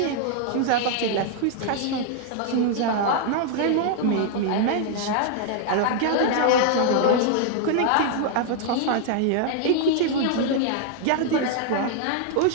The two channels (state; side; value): different; both; correlation 0.00